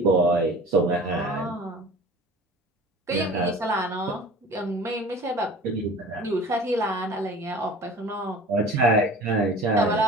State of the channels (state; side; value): normal; both; correlation 0.42